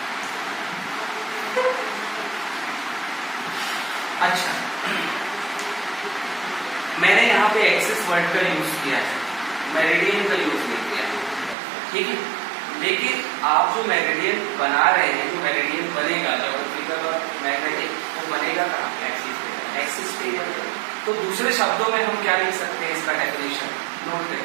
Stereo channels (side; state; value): left; drops out; at 11.6 s